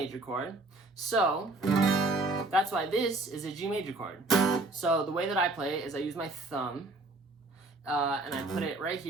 chord. So that's why this is a G major chord. So the way that I play it is I use my thumb, and I put it right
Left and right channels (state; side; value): quieter; left; 3.0 dB